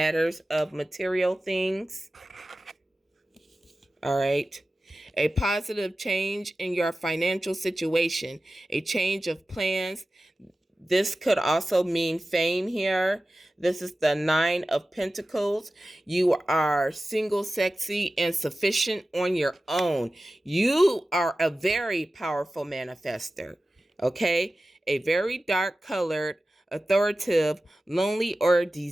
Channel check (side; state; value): both; normal; correlation 0.95